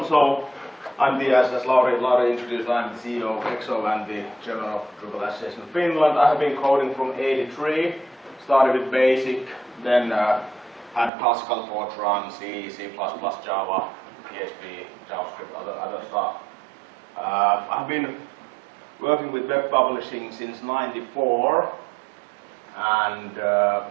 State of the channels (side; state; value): left; drops out; at 11.1 s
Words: So I'm the, as Lauri introduced, I'm the CEO of EXO and the chairman of Drupal Association of Finland. I have been coding from '83, started with BASIC, then had classical Fortran, C, C++, Java, PHP, JavaScript, other stuff. I've been working with web publishing since '94 and